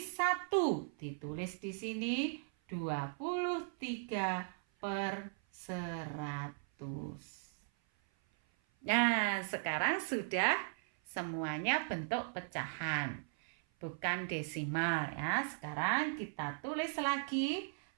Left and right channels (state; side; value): silent; left; 53 dB below the other